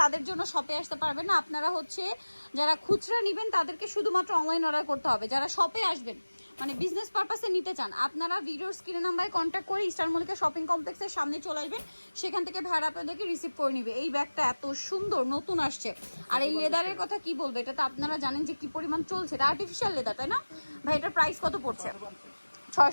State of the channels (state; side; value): inverted; both; correlation -1.00